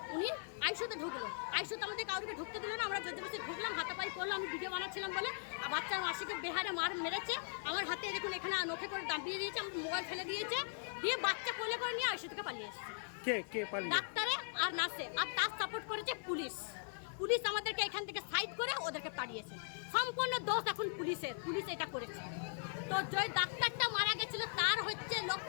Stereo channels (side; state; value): right; silent; 51 dB below the other